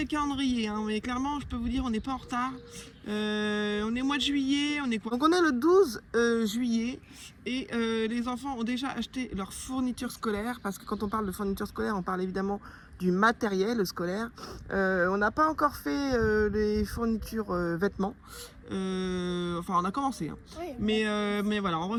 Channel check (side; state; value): both; identical; correlation 1.00